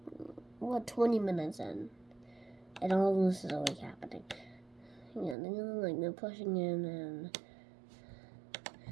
We're 20 minutes in, and all this is already happening. Yeah, they're pushing in, and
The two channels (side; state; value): left; drops out; at 5.4 s